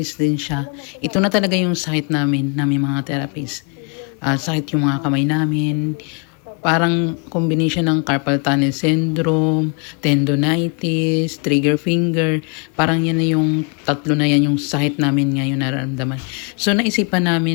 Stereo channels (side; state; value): right; quieter; 36.5 dB